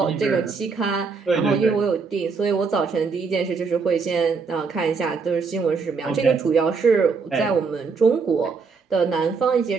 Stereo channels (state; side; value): quieter; left; 4.9 dB